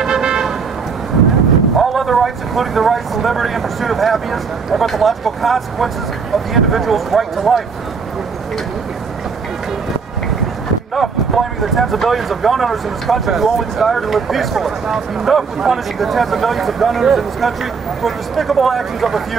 All other rights, including the rights to liberty and pursuit of happiness, are but the logical consequences of the individual's right to life. Enough with blaming the tens of millions of gun owners in this country who only desire to live peacefully. Enough with punishing the tens of millions of gun owners in this country for the despicable actions of a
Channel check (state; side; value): quieter; left; 5.4 dB